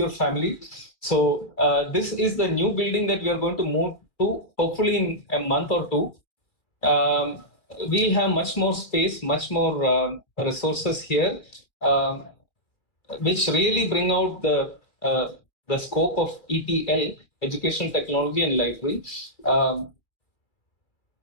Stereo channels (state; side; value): late; right; 2.4 ms